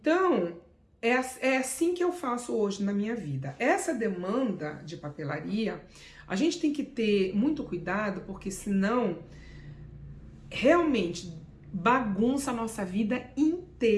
é assim que eu faço hoje na minha vida. Essa demanda de papelaria, a gente tem que ter muito cuidado, porque senão realmente bagunça a nossa vida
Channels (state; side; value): identical; both; correlation 1.00